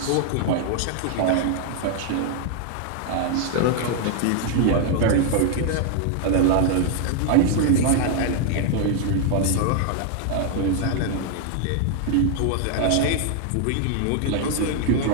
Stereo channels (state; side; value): different; both; correlation 0.00